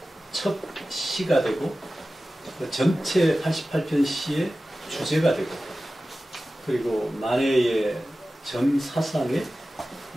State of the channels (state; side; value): normal; both; correlation 0.95